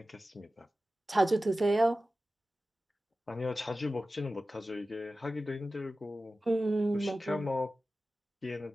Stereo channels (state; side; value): normal; both; correlation 0.95